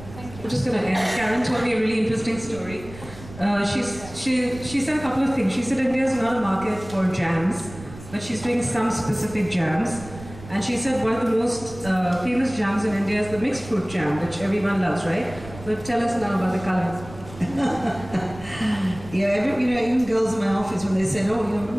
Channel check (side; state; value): right; noise; rumble, 16 dB below the sound